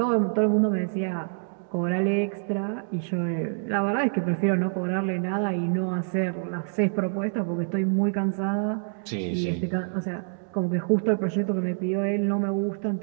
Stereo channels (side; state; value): left; silent; digital silence